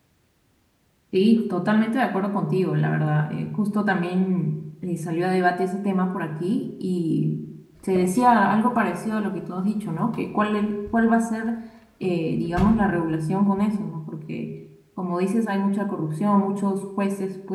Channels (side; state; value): both; identical; correlation 1.00